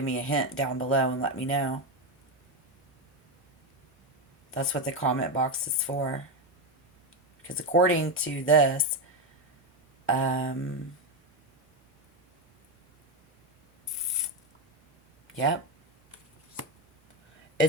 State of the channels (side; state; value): both; normal; correlation 0.11